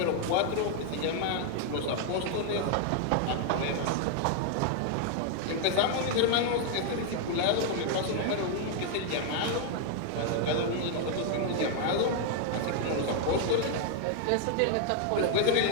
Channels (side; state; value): both; different; correlation 0.00